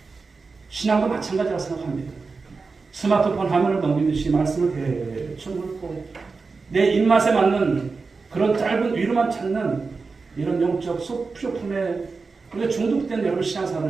신앙도 마찬가지라고 생각합니다. 스마트폰 화면을 넘기듯이 말씀을 대충 훑고 내 입맛에 맞는 그런 짧은 위로만 찾는 이런 영적 쇼품에 우리가 중독된 여러분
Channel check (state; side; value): quieter; left; 4.4 dB